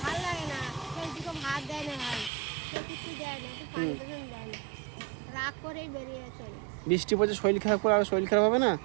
ভালো লাগে না, কেউ দুটো ভাত দেয় না, ভাই কেউ কিছু দেয় না, একটু পানি দেয় না, রাগ করেই বেরিয়ে চলে। বৃষ্টি পড়ছে, শরীর খারাপ করে আর শরীর খারাপ হবে না?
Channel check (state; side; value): drops out; left; at 2.3 s